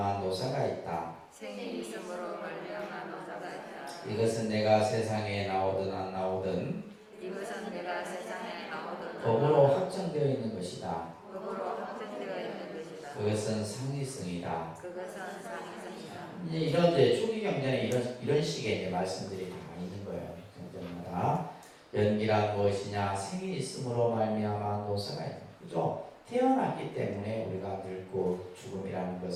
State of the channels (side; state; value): both; identical; correlation 1.00